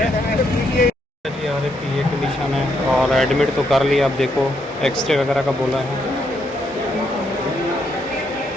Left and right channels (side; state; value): both; normal; correlation 0.76